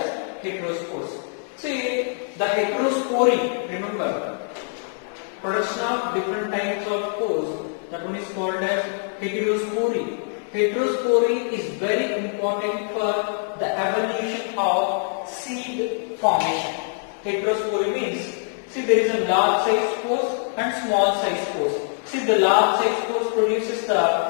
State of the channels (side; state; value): right; silent; 63 dB below the other